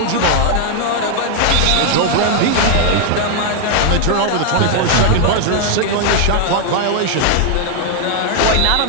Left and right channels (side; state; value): both; different; correlation 0.00